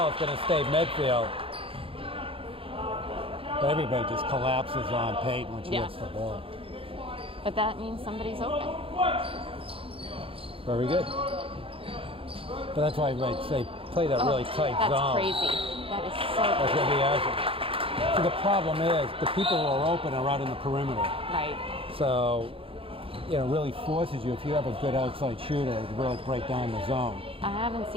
is going to stay Medfield. But everybody just collapses on Peyton when she gets the ball. But that means somebody's open. Very good. But that's why I say play that really tight that's zone. Crazy. That is so That's crazy. going to be Ashland. So the problem is the people who are open are out in the perimeter. Right. So, really forces you, if you have a good outside shooter, to really break down the zone. I haven't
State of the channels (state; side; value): late; left; 0.27 ms